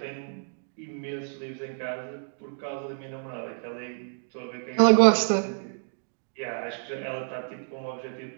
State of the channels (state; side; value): silent; left; digital silence